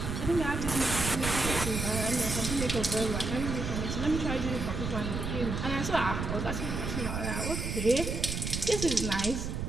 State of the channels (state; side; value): noise; right; rumble, 3 dB below the sound